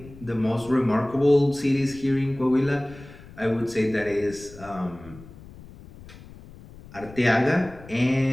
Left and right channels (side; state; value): left; noise; rumble, 19 dB below the sound